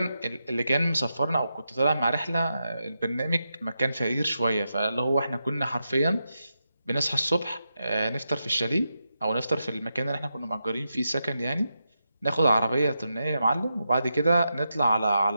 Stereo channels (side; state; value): both; inverted; correlation -0.87